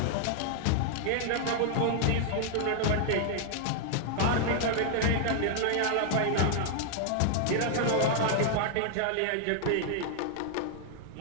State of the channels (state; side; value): different; both; correlation -0.01